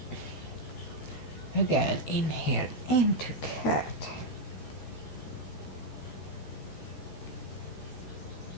Again, inhale into cat.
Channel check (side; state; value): right; late; 13 ms